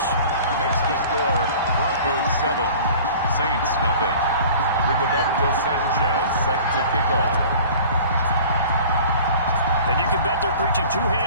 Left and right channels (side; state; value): both; inverted; correlation -0.45